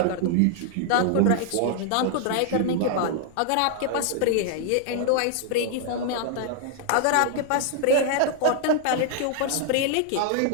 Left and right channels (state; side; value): different; both; correlation 0.00